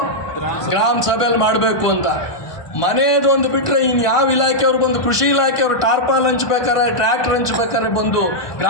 ಗ್ರಾಮ ಸಭೆಯಲ್ಲಿ ಮಾಡಬೇಕು ಅಂತ. ಮನೆಯದೊಂದು ಬಿಟ್ಟರೆ ಇನ್ನು ಯಾವ ಇಲಾಖೆಯವರು ಬಂದು, ಕೃಷಿ ಇಲಾಖೆಯವರು ಟಾರ್ಪಾಲ್ ಹಂಚ್ಬೇಕಾರೆ, ಟ್ರ್ಯಾಕ್ಟರ್ ಹಂಚ್ಬೇಕಾರೆ ಬಂದು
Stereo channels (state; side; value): late; right; 1.5 ms